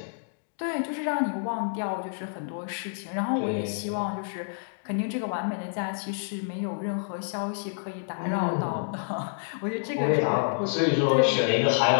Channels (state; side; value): silent; right; digital silence